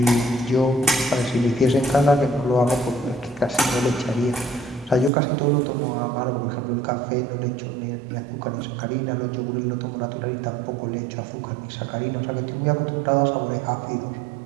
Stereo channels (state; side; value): drops out; left; at 5.1 s